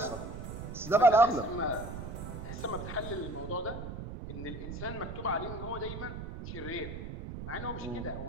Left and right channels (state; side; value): noise; right; rumble, 8 dB below the sound